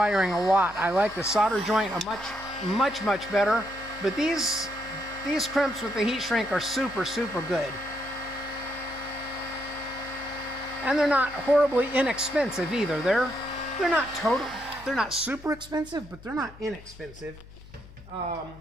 a lot. I like the solder joint much better. But these crimps with the heat shrink are super good. And they're not horribly inexpensive either. They're not super expensive, but they're not inexpensive.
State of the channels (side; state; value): left; noise; hum, 19 dB below the sound